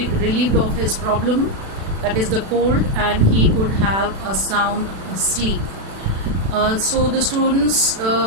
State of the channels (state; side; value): late; left; 36 ms